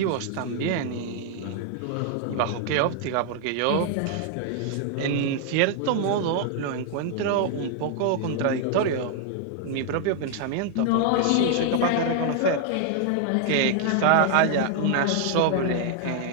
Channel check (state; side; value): different; both; correlation 0.00